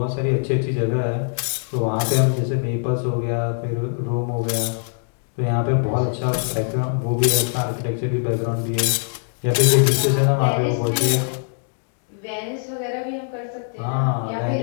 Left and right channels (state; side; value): silent; right; digital silence